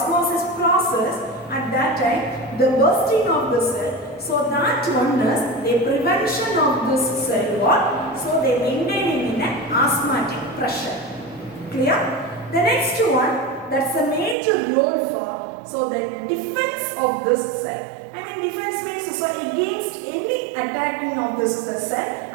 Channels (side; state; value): left; drops out; at 14.4 s